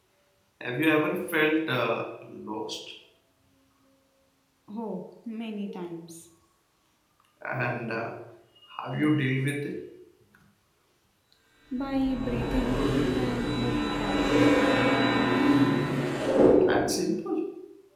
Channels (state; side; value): identical; both; correlation 1.00